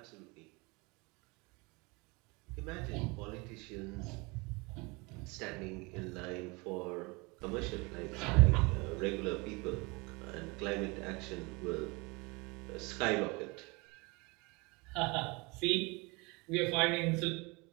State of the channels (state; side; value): quieter; left; 27.0 dB